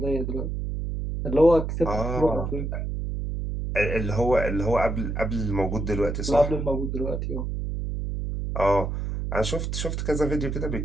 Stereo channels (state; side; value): noise; right; hum, 3 dB below the sound